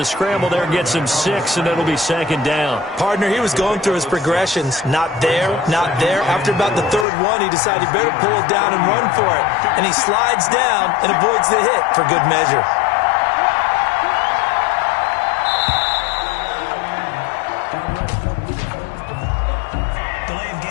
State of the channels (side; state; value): right; drops out; at 7.1 s